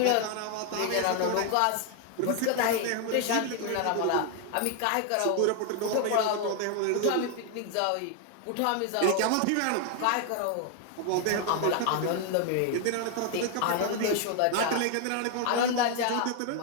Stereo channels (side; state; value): both; different; correlation 0.00